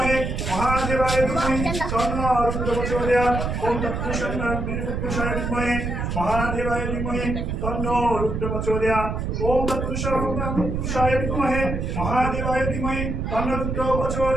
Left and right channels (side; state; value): right; noise; rumble, 2 dB below the sound